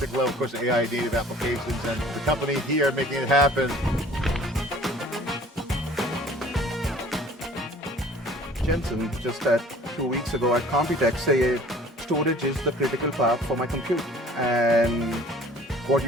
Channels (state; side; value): normal; both; correlation 0.49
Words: level, of course, AI native applications, and the company here making it happen. Jensen, just 2 weeks ago at Computex, say storage is the critical path for my compute. And what